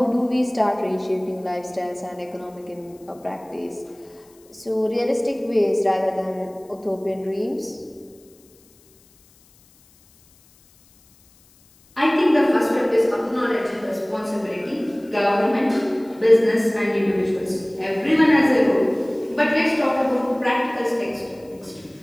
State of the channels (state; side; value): noise; left; hiss, 30 dB below the sound